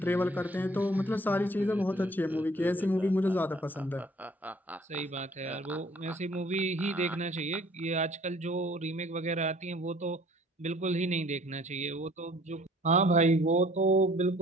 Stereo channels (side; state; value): both; normal; correlation 0.55